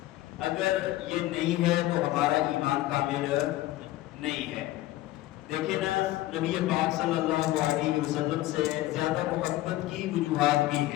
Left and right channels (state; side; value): quieter; right; 16.2 dB